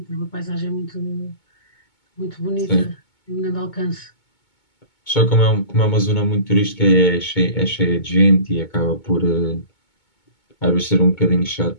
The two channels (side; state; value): right; late; 2.2 ms